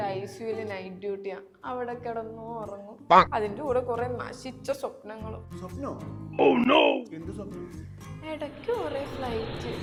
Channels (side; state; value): both; identical; correlation 1.00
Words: ICUല് നൈറ്റ് ഡ്യൂട്ടിയാ. അവിടെ കിടന്നു ഉറങ്ങും. അതിന്റെ കൂടെ കുറെ നശിച്ച സ്വപ്നങ്ങളും. സ്വപ്നോ? എന്ത് സ്വപ്നം? ഇടയ്ക്ക് കുറെ ഫ്ലൈറ്റ്,